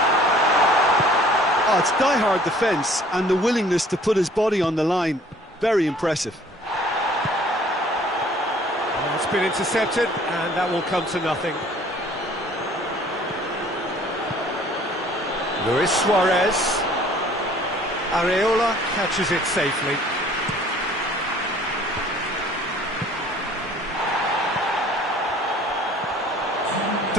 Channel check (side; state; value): both; normal; correlation 0.54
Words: Oh, it's die-hard defence and the willingness to put his body on the line. Very impressive. Well, it's been intercepted, and that will come to nothing. Luis Suarez. Areola catches it safely.